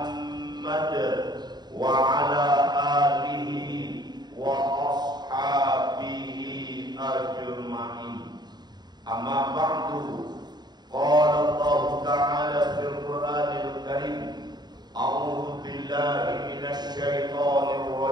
wa ala alihi wa ashabihi ajma'in. Amma ba'du. Qala Allah Ta'ala fil Qur'anil Karim, a'udzu billahi minasy syaithanir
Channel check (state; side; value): late; left; 0.20 ms